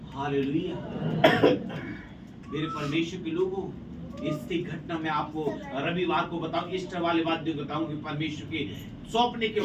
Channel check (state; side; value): identical; both; correlation 1.00